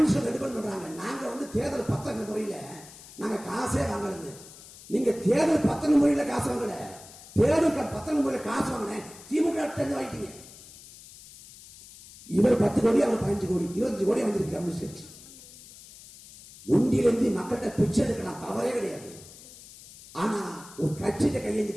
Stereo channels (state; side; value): noise; left; hiss, 19 dB below the sound